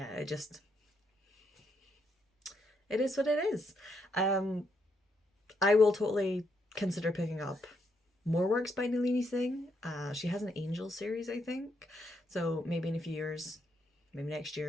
it is what it is. I will totally consider picking up more works by Nalini Singh. She has an Angel series, I think. So maybe in a few years, maybe next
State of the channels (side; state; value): both; normal; correlation 0.77